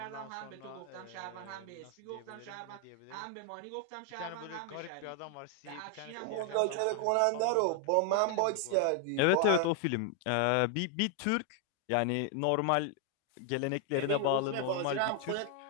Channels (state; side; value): different; both; correlation 0.00